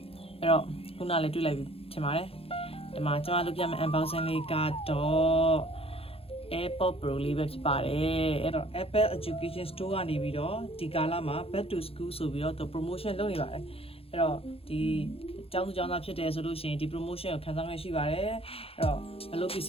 အဲ့တော့ခုနလည်းတွေ့လိုက်ပြီထင်ပါတယ်ဒီမှာကျွန်မလုပ်ပြမယ် unboxing လေးကတော့ AirPods Pro လေးပဲဖြစ်ပါတယ်အဲ့တော့ Apple Education Store ကနေပြီးတော့ဒီကာလမှာ Back to School ဆိုပြီးတော့သူ promotion လုပ်နေပါတယ်အဲ့တော့ဒီကျောင်းသူကျောင်းသားဖြစ်တယ်ဆိုလို့ရှိရင်ဒီ promotion ကိုခံစားခွင့်ရှိပါတယ်အဲ့တော့ဘယ်လိုပစ္စ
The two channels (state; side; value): late; right; 0.28 ms